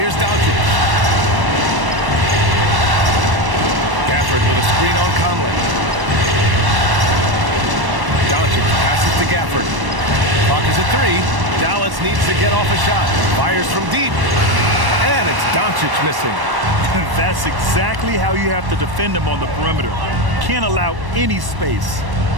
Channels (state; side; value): late; left; 1.1 ms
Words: Doncic. Gafford with a screen on Conley. Doncic passes to Gafford. Clock is at 3. Dallas needs to get off a shot. Fires from deep. And it's Doncic missing. That's exactly how you have to defend him on the perimeter. Can't allow any space.